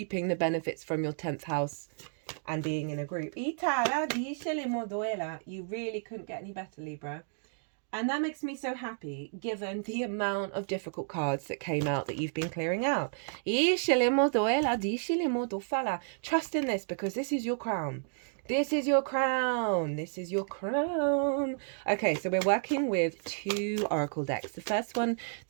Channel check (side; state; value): left; silent; digital silence